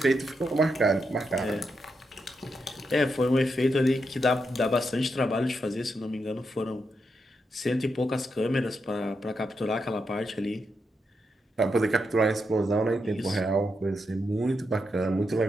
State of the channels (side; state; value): both; normal; correlation 0.84